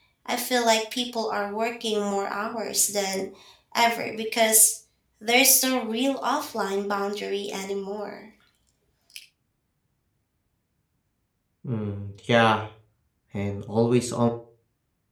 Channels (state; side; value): identical; both; correlation 1.00